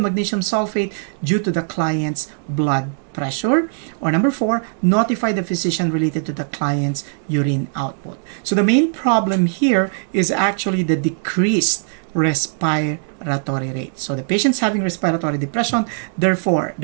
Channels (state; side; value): silent; left; 66 dB below the other